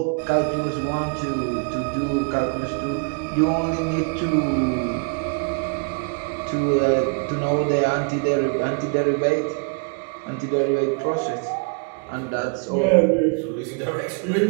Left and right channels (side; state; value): left; quieter; 38.0 dB